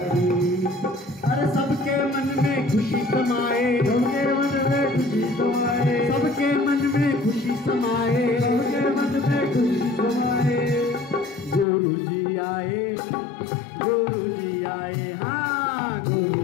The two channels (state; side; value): drops out; right; at 11.7 s